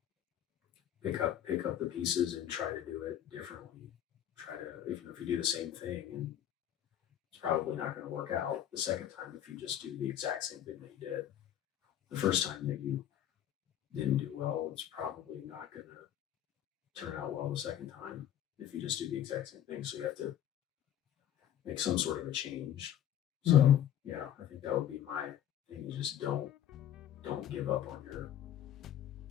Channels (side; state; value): right; quieter; 10.7 dB